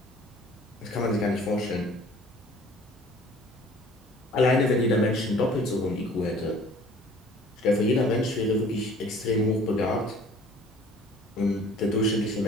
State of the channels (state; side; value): normal; both; correlation 0.51